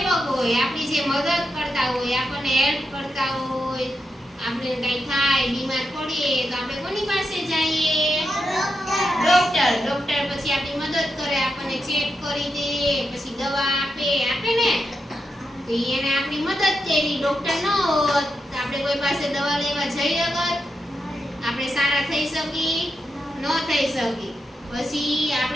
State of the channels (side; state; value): both; normal; correlation 0.87